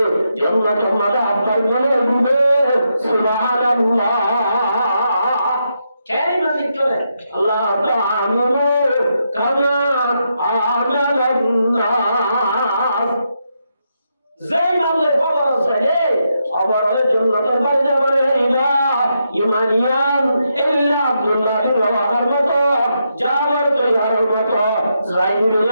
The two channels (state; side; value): inverted; both; correlation -0.82